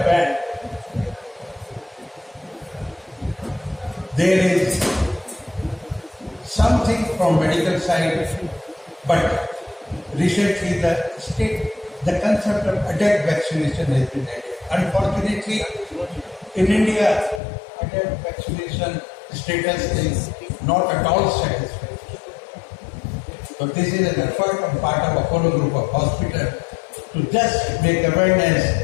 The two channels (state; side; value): drops out; right; at 17.4 s